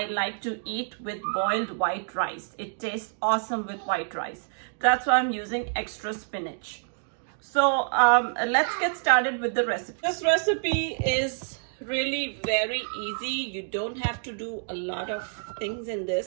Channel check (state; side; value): silent; left; digital silence